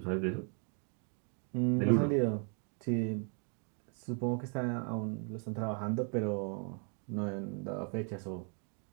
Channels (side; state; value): left; quieter; 39.2 dB